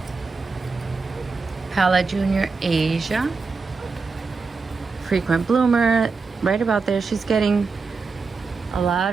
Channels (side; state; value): left; quieter; 4.5 dB